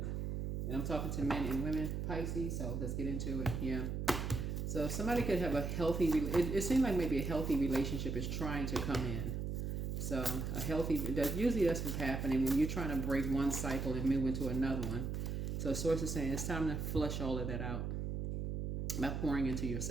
And I'm talking to men and women, Pisces, so let's get into it. Yeah. So somebody could have a healthy, it seems like maybe a healthy relationship is trying to come in. So a healthy, usually that's what's happening when you're trying to break one cycle and move into another one. So source is saying it's time to flush all of that out by pouring into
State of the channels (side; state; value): right; noise; hum, 2 dB below the sound